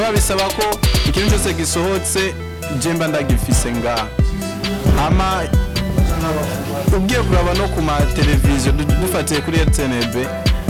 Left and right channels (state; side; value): identical; both; correlation 1.00